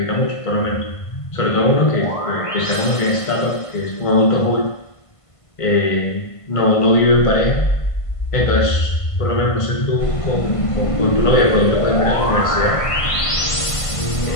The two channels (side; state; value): right; late; 1.5 ms